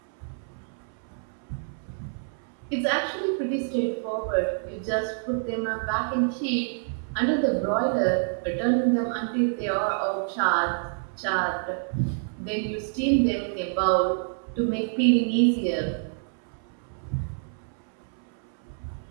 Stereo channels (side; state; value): left; silent; 60 dB below the other